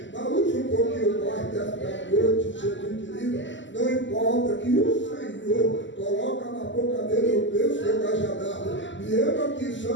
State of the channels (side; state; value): right; late; 0.54 ms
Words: mas usa um pouquinho mais desta noite, Jesus querido, não importa que o Senhor coloca na boca dele o bênção e o cajadado, e eu aqui